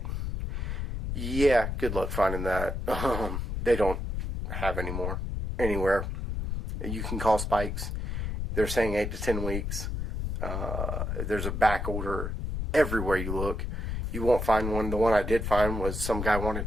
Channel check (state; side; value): noise; left; rumble, 3 dB below the sound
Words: Yeah, good luck finding that. They don't have any more anywhere. You can call Spikes. They're saying 8 to 10 weeks. There's a back order everywhere you look. You won't find one. The one I did find was some guy